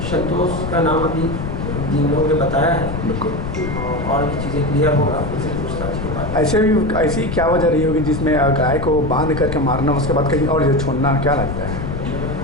संतोष का नाम अभी जिन लोगों ने बताया है, बिल्कुल, और भी चीज़ें क्लियर होगा उनसे पूछताछ के बाद। ऐसी क्या वजह रही होगी जिसमें गाय को बांध करके मारना, उसके बाद कहीं और जो छोड़ना, क्या लगता है?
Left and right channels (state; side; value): noise; left; rumble, 5 dB below the sound